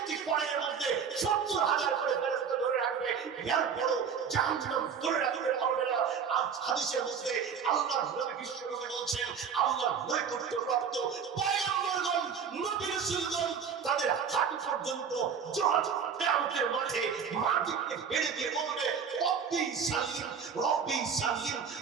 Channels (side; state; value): left; quieter; 6.7 dB